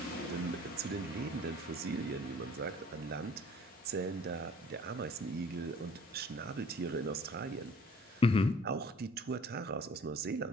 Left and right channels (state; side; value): normal; both; correlation 0.53